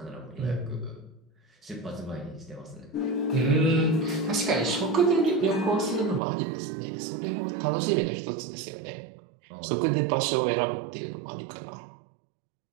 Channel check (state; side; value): drops out; left; at 6.2 s